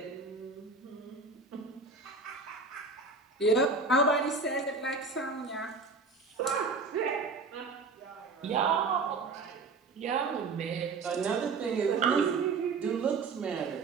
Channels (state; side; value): quieter; left; 4.1 dB